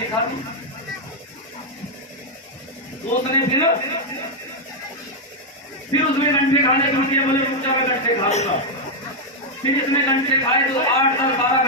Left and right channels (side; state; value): both; normal; correlation -0.01